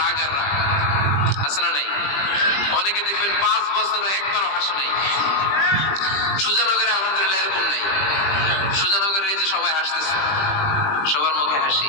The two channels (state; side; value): late; right; 20 ms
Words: আর রাগ, আছে না নাই? অনেকে দেখবেন 5 বছর একবারও হাসে নাই। সুজানগরে আলহামদুলিল্লাহ এরকম নাই। সুজানগরের এই যে সবাই হাসতেছে, সবার মুখে হাসি।